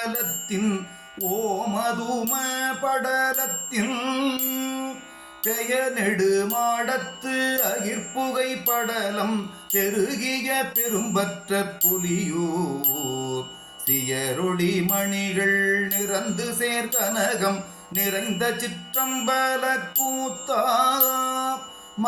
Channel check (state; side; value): identical; both; correlation 1.00